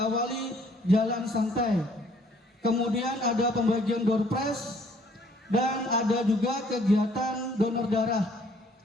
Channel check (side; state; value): both; normal; correlation 0.61